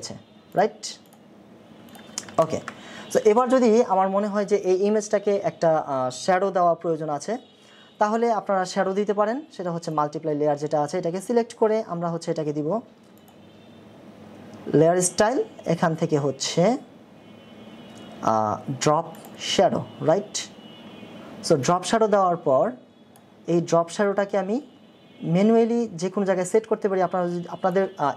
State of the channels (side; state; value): both; identical; correlation 1.00